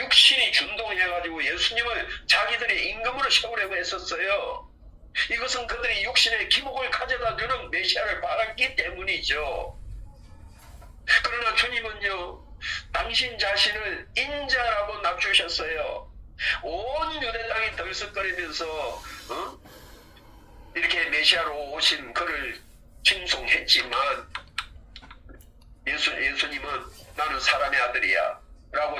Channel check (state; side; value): identical; both; correlation 1.00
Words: 준동해가지고 예수님을 자기들의 임금으로 세우려고 했었어요. 이것은 그들이 육신의 기복을 가져다 주는 메시아를 바랐기 때문이죠. 그러나 주님은요 당신 자신을 인자라고 낮추셨어요. 온 유대 땅이 들썩거리면서 이렇게 메시아로 오신 그를 칭송했지만 예수님은 나는 사람의 아들이야